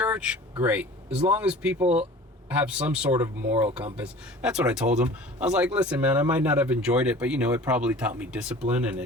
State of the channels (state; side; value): normal; both; correlation 0.43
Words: great. As long as people have some sort of moral compass. That's what I told him. I was like, listen, man, I might not have enjoyed it, but it probably taught me discipline, and